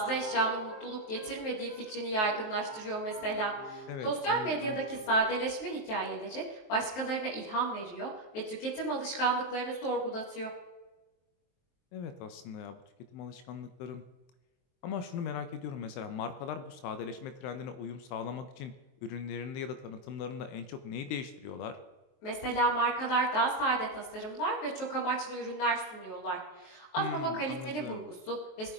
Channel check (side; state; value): right; late; 23 ms